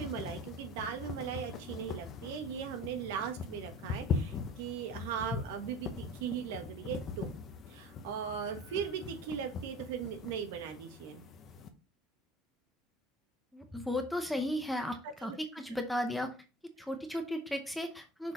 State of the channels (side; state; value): both; normal; correlation 0.41